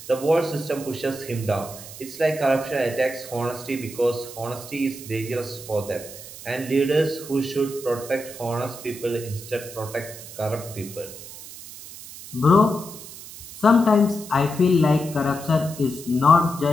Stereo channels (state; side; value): noise; right; hiss, 14 dB below the sound